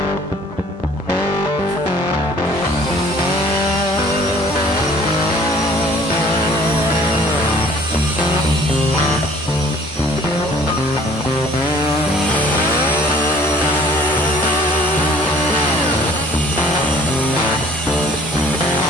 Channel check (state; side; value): normal; both; correlation 0.54